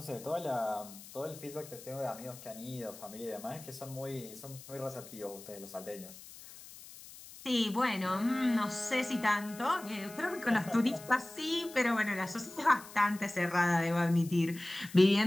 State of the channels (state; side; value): noise; left; hiss, 17 dB below the sound